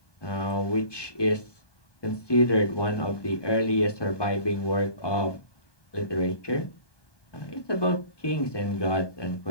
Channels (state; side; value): late; right; 1.2 ms